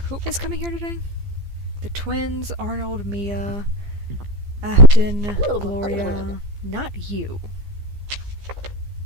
who is coming here today? The twins, Arnold, Mia, Afton, Gloria. Not you.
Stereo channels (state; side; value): late; left; 15 ms